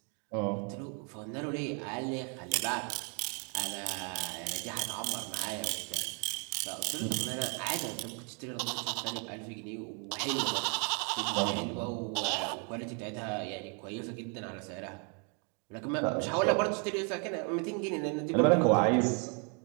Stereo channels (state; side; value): quieter; left; 34.9 dB